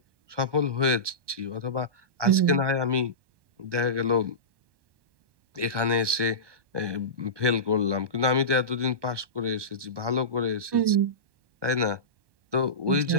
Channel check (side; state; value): left; late; 1.2 ms